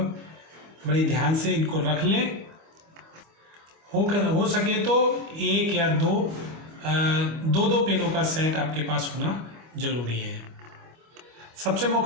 ध्यान से इनको रख लें। हो सके तो एक या दो पेनों का सेट आपके पास होना जरूरी है। सबसे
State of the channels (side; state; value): left; late; 25 ms